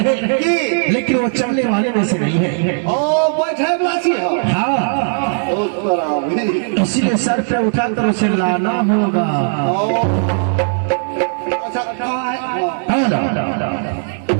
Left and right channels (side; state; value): left; silent; digital silence